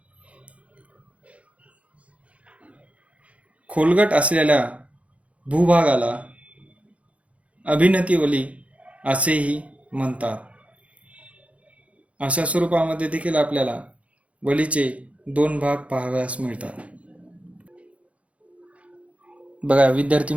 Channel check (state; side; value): late; left; 0.064 ms